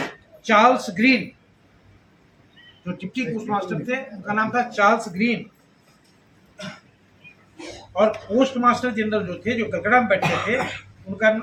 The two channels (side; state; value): both; identical; correlation 1.00